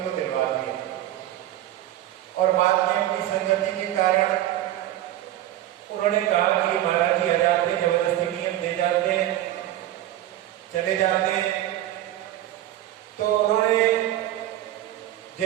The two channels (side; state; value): left; quieter; 13.6 dB